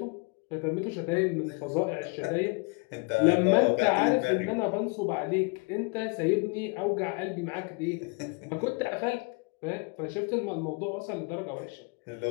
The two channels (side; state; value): right; quieter; 30.6 dB